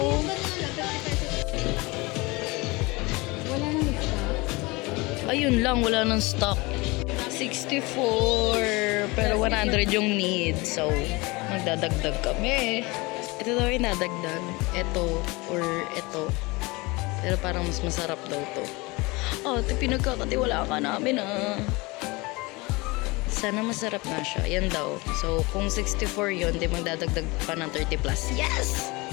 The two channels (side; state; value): right; quieter; 24.2 dB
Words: Wala nang isa. Ayun lang, wala nang stock. 64, pero 100 yung need. So, magdadagdag kami. Ito daw yung nadagdag. Ito, or ito. Pero parang mas masarap daw to. Oh, ito pinagkakatiwala ka namin ah. Sana masarap na siya. Yan daw. So, kung 64 yun, di magdadagdag pa ng 30 plus. Yes!